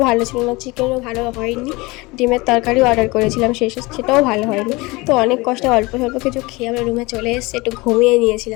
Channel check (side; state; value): right; quieter; 23.4 dB